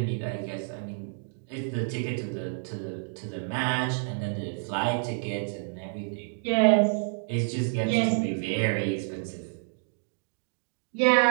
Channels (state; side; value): silent; left; digital silence